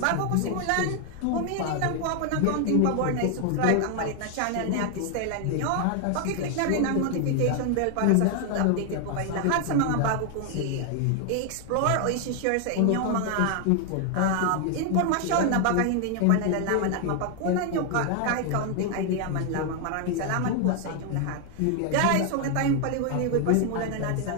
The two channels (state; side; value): different; both; correlation 0.00